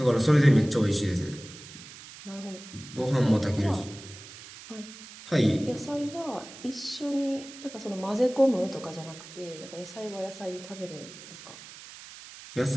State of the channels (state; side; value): noise; right; hiss, 16 dB below the sound